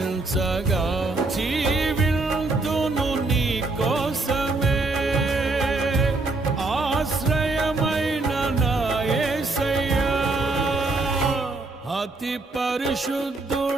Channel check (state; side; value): quieter; left; 3.3 dB